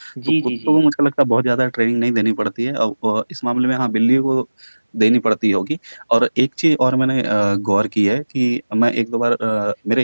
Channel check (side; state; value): both; inverted; correlation -1.00